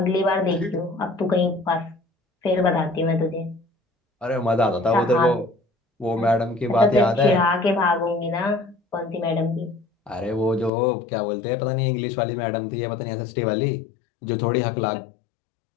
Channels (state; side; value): drops out; right; at 10.7 s